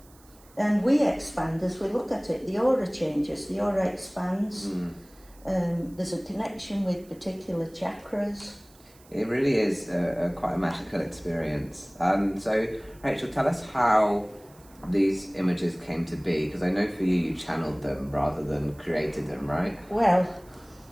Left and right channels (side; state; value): right; noise; hiss, 27 dB below the sound